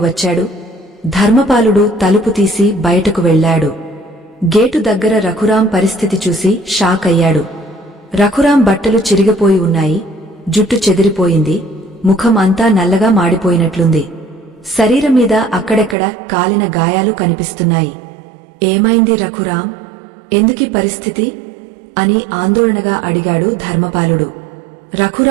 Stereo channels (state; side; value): drops out; left; at 16.0 s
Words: వచ్చాడు? ధర్మపాలుడు తలుపు తీసి బయటకు వెళ్లాడు. గేటు దగ్గర రఘురాం పరిస్థితి చూసి షాక్ అయ్యాడు. రఘురాం బట్టలు చిరిగిపోయి ఉన్నాయి, జుట్టు చెదిరిపోయింది, ముఖం అంతా నల్లగా మాడిపోయినట్లుంది. శరీరం మీద అక్కడెక్కడ కాలిన గాయాలు కనిపిస్తున్నాయి. ఏమైంది రఘురాం? ఎందుకీ పరిస్థితి అని ఆందోళనగా అడిగాడు ధర్మపాలుడు.